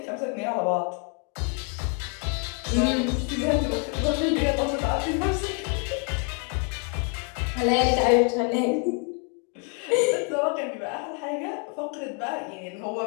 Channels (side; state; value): right; quieter; 36.7 dB